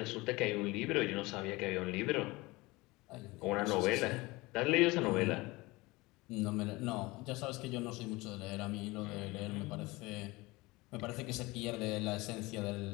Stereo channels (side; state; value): right; quieter; 22.2 dB